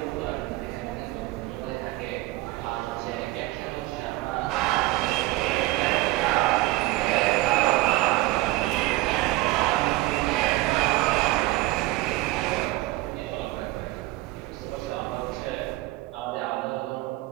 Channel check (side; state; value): left; quieter; 19.1 dB